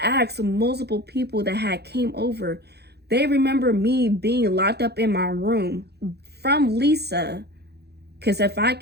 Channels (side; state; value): left; late; 0.48 ms